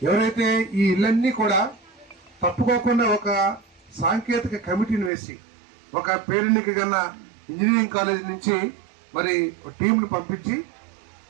ఎవరైతే ఈ ఇళ్ళన్నీ కూడా తప్పుకోకుండా ఒక సాంకేతిక కమిటీని వేసి ఒక పేరెన్నిక కన్నా ఇంజనీరింగ్ కాలేజ్ నుంచి మరి టీంలు పంపించి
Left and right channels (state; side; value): drops out; left; at 5.1 s